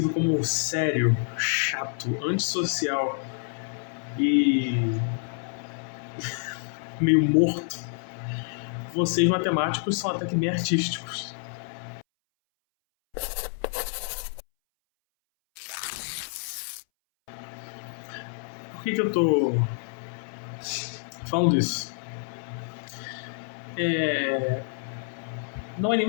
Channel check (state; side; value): silent; right; 60 dB below the other